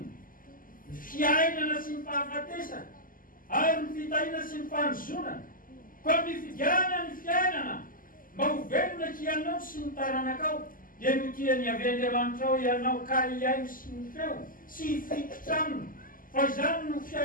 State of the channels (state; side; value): late; right; 0.41 ms